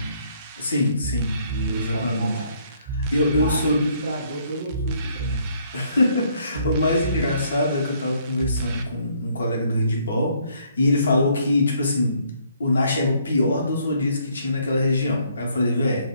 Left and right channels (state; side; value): inverted; both; correlation -0.67